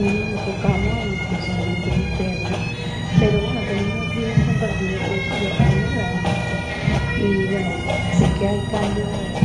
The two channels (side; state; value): both; identical; correlation 1.00